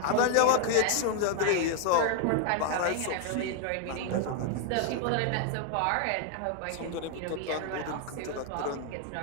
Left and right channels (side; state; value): both; different; correlation 0.00